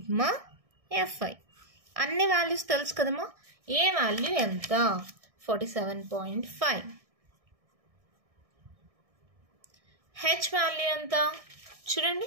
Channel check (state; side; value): late; left; 1.6 ms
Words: f i. అన్ని వాల్యూస్ తెలుసు కదమ్మా. ఏ వాల్యూ ఎంత? 47.5. హెచ్ వాల్యూ ఎంత చూడండి